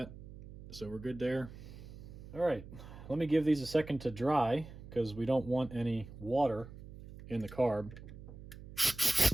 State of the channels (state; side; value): noise; right; hum, 14 dB below the sound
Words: so we're good there. All right, let me give these a second to dry because we don't want any water in the carb.